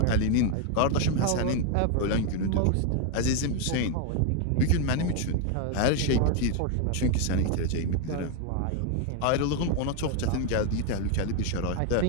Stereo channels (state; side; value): different; both; correlation 0.01